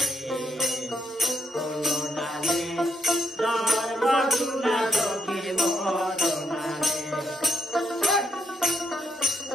কোন ডালে ধর্ম শুনা সখীর বরণা রে।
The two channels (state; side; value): normal; both; correlation 0.76